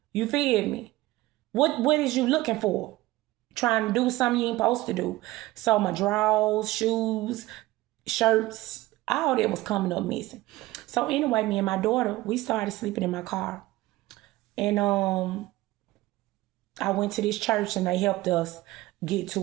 You feel me? What is you looking for? Trying to do something you ain't supposed to do. So my drawers, shoes, shirts, all that was coming up missing. So anyway, me and my daughter, we started sleeping in my car. And I went to this church and they helped us get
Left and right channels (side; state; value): left; quieter; 18.2 dB